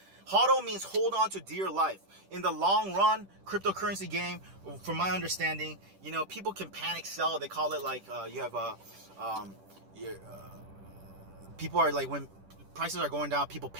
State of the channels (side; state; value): left; late; 10 ms